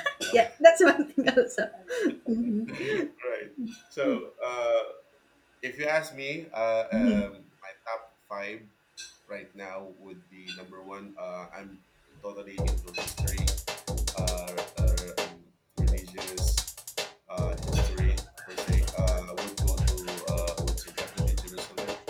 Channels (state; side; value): identical; both; correlation 1.00